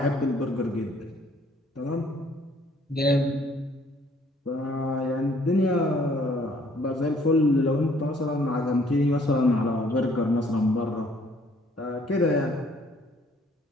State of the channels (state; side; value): normal; both; correlation 0.61